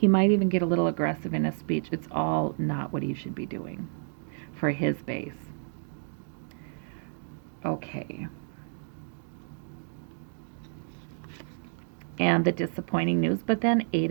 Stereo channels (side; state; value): left; silent; digital silence